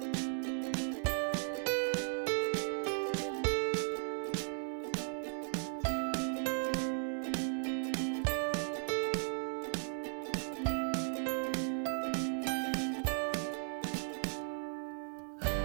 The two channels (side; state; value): left; silent; 53 dB below the other